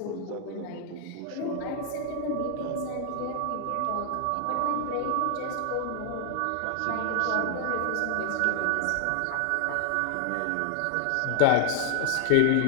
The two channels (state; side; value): different; both; correlation 0.00